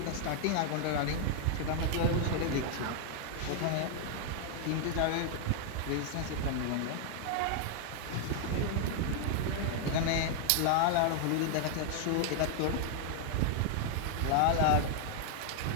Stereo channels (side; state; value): both; different; correlation 0.00